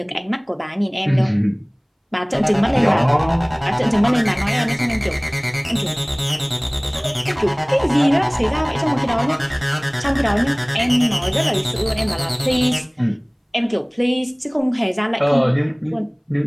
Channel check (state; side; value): identical; both; correlation 1.00